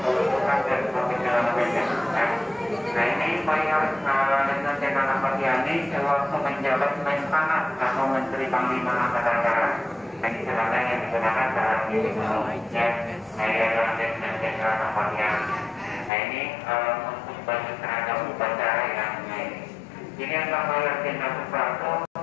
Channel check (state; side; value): drops out; right; at 16.1 s